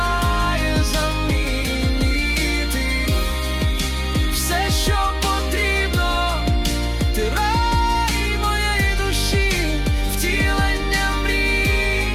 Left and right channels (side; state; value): both; identical; correlation 1.00